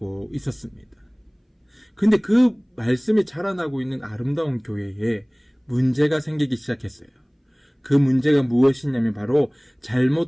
있었습니다. 근데 그 말씀이 자라나고 있는 아름다운 교회에 문제가 생기기 시작했어요. 그 문제가 무엇이냐면 바로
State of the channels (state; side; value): identical; both; correlation 1.00